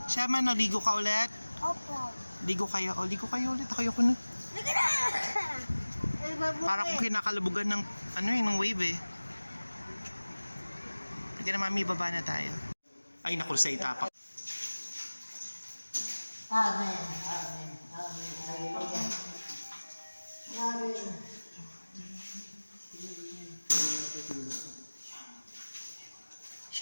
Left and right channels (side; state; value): both; inverted; correlation -1.00